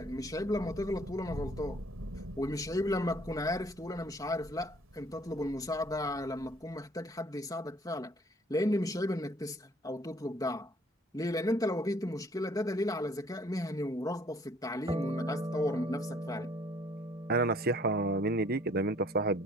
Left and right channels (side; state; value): both; normal; correlation 0.58